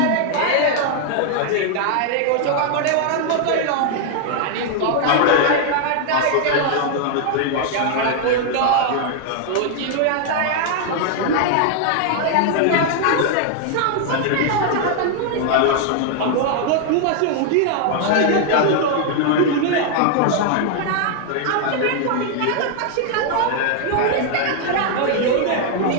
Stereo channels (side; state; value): both; different; correlation 0.00